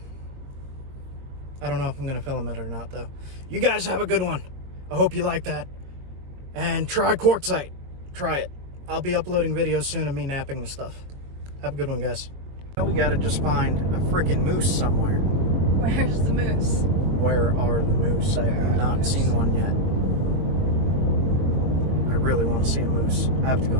I don't know if I'm going to film it or not, though. You guys have a good one. I hope you like that. And try quartzite. Try it. I'll be uploading videos soon of me napping the stuff. Have a good one, guys. Now we got to just find a freaking moose somewhere. Where's the moose? Where are the moose? I have not seen one yet. I really want to see a moose. I have to go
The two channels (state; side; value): late; left; 22 ms